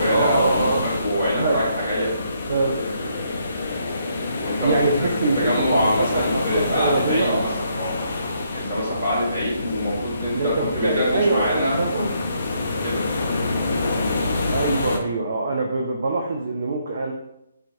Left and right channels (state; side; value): inverted; both; correlation -0.73